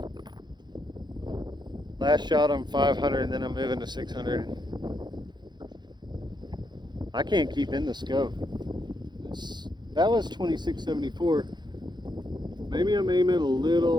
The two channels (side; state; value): left; late; 0.21 ms